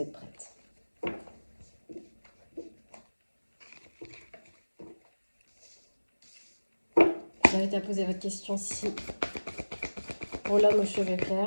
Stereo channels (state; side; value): inverted; both; correlation -1.00